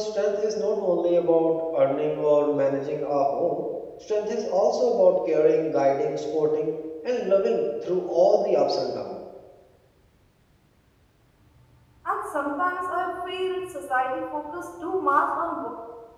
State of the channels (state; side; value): identical; both; correlation 1.00